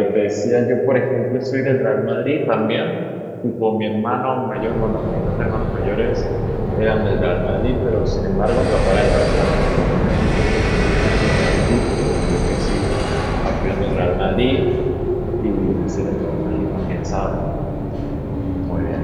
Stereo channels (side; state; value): both; identical; correlation 1.00